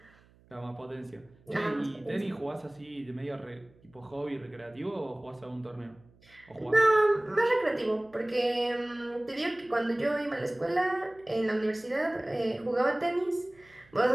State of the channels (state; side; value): noise; right; hum, 29 dB below the sound